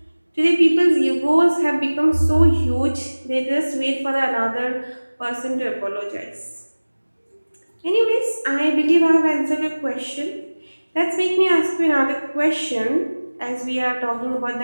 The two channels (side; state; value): both; inverted; correlation -1.00